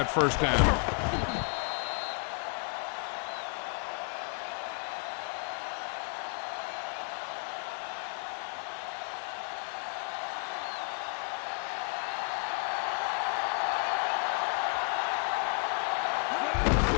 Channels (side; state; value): right; quieter; 36.6 dB